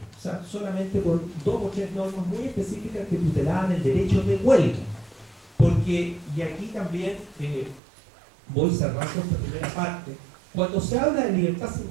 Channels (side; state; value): left; drops out; at 7.8 s